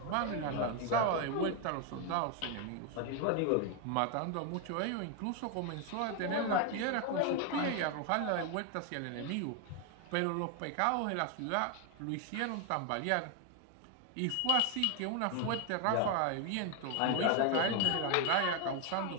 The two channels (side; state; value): both; different; correlation 0.01